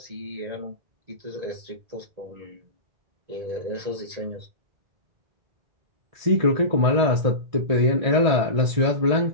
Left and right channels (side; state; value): left; late; 1.6 ms